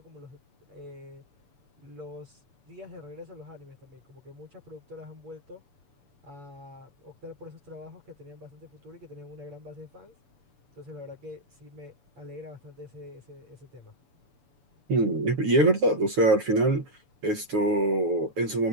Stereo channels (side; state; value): left; late; 6.9 ms